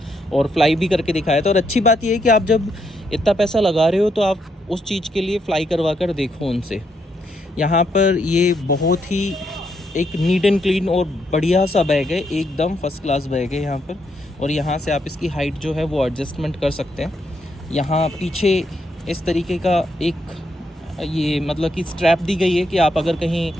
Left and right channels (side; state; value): both; normal; correlation 0.77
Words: और फ्लाई भी करके दिखाया था। और अच्छी बात यह है कि आप जब इतना पैसा लगा रहे हो तो आप उस चीज़ के लिए फ़्लाई करवा कर देखो उनसे। यहाँ पर ये बहुत ही एक नीट एंड क्लीन और बढ़िया सा बैग है, एकदम फर्स्ट क्लास बैग है यहाँ पर। और यहाँ से आप इसकी हाइट जो है वो एडजस्टमेंट कर सकते हैं। यहाँ पीछे इस तरीके का एक ये मतलब कि स्ट्रैप दी गई है कि आप अगर कहीं